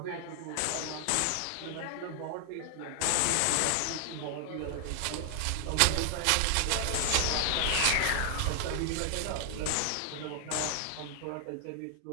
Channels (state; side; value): different; both; correlation 0.00